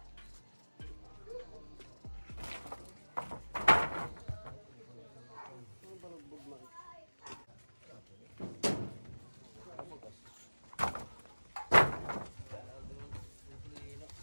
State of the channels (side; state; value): both; inverted; correlation -1.00